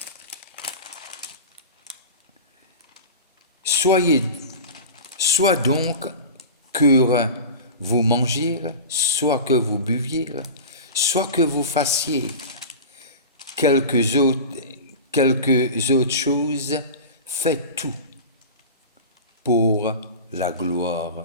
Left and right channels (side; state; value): both; inverted; correlation -0.30